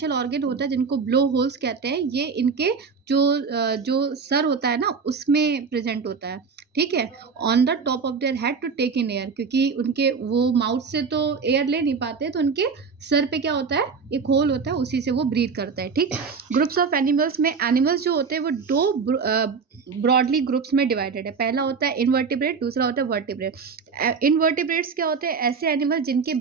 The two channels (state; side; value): quieter; left; 5.4 dB